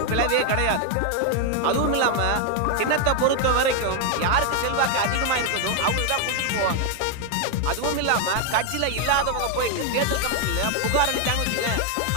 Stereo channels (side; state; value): both; different; correlation 0.01